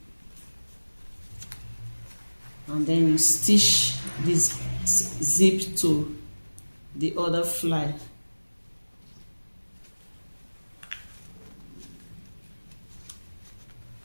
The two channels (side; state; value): both; inverted; correlation -1.00